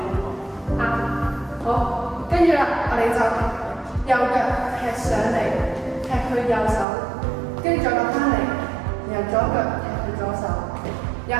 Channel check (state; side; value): drops out; left; at 6.9 s